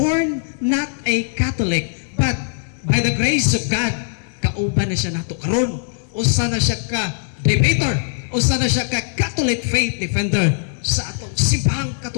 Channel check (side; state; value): right; silent; digital silence